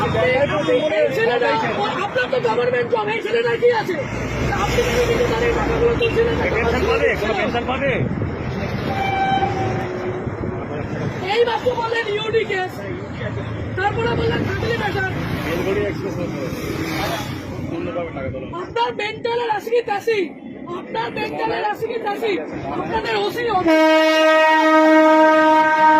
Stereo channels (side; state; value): both; identical; correlation 1.00